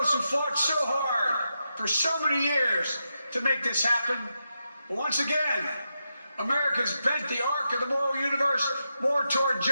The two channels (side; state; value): both; inverted; correlation -0.86